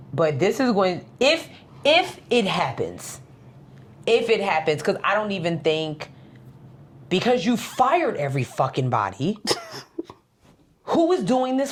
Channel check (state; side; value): identical; both; correlation 1.00